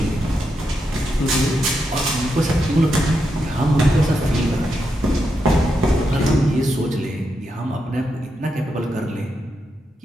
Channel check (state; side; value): normal; both; correlation 0.84